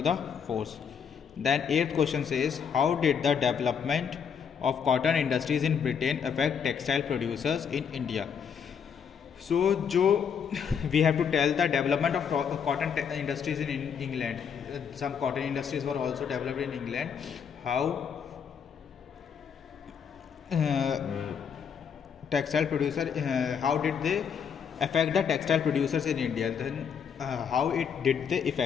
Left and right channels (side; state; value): right; quieter; 7.2 dB